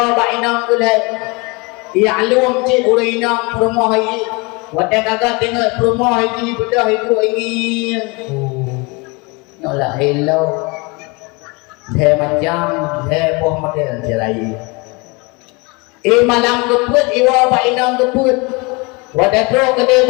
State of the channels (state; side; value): quieter; right; 27.9 dB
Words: ba inang kulai ya'lum ci urinang rumah ini wadah kagak tengok rumah ini bedah itu ingin nyola hello the macam the poh model jarai malam keput iwa ba inang keput wadah tro kede